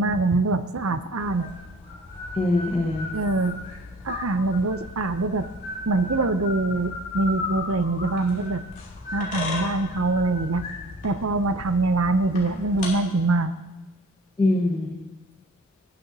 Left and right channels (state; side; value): normal; both; correlation 0.48